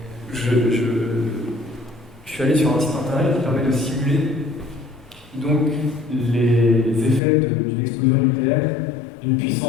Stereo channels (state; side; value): drops out; right; at 7.2 s